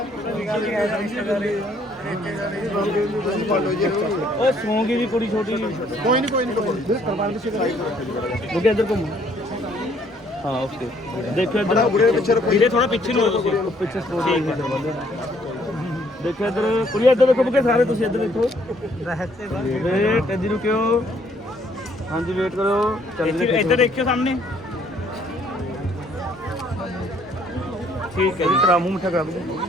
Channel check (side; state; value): both; normal; correlation 0.65